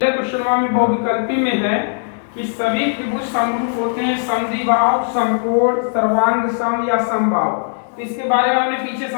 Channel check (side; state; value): right; silent; 65 dB below the other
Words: क्वेश्चन में बहुविकल्पी में है कि सभी त्रिभुज समरूप होते हैं, समद्विबाहु, समकोण, सर्वांग सम या समबाहु। तो इसके बारे में हमने पीछे